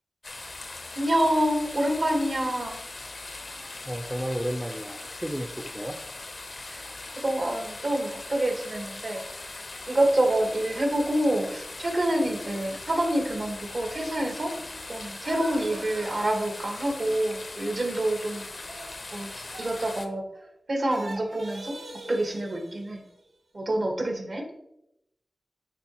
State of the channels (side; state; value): both; normal; correlation 0.95